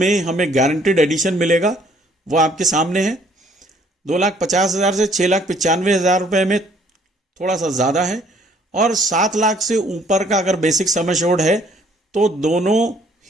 हमें गारंटेड एडिशन मिलेगा, वो आपके सामने है। 2,50,000 से 6,95,000 रुपए में थोड़ा सा ज़्यादा है, और 7 लाख से ऊपर का अगर बेसिक सम एश्योर्ड है तो दोनों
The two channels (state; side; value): normal; both; correlation 0.62